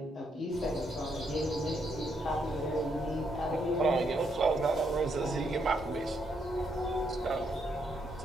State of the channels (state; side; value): normal; both; correlation 0.76